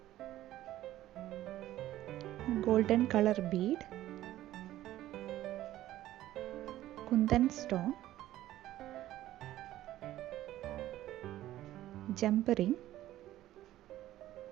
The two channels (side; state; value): left; quieter; 14.2 dB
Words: golden colour bead, kundan stone, jump ring,